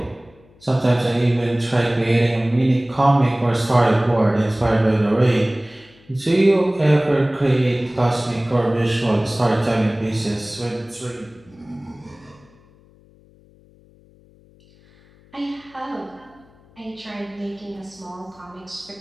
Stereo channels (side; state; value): left; noise; hum, 28 dB below the sound